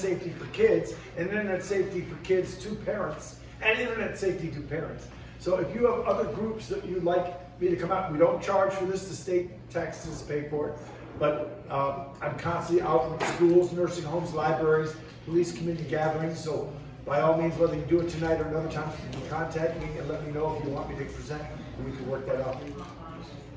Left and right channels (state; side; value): identical; both; correlation 1.00